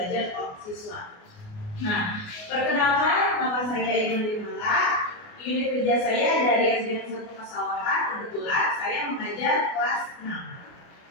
siswa. Nah, perkenalkan, nama saya Iman Dimala. Unit kerja saya dari SDN 1 Pesawahan. Kebetulan saya mengajar kelas 6.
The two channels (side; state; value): right; late; 28 ms